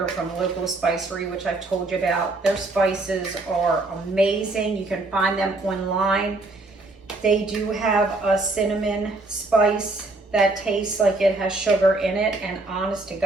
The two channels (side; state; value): left; quieter; 3.1 dB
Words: from Local Spicery, which I've told you about. Their spices are amazing. You can find them online. They do have a cinnamon spice that tastes like it has sugar in it, and honest to